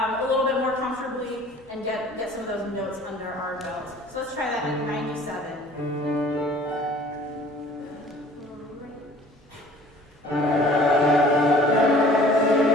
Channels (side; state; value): both; normal; correlation 0.50